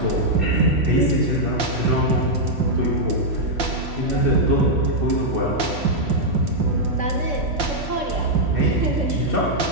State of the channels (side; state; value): left; late; 3.1 ms